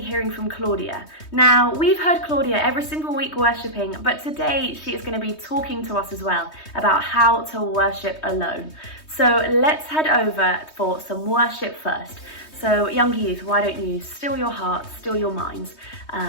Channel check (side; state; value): right; late; 3.2 ms